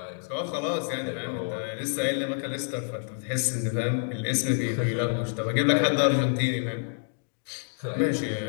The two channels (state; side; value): silent; right; digital silence